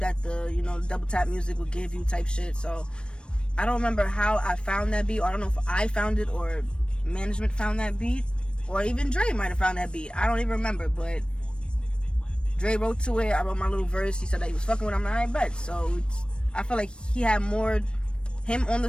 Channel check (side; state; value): right; late; 0.055 ms